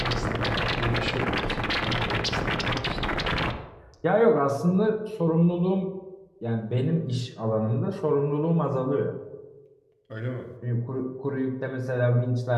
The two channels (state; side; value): identical; both; correlation 1.00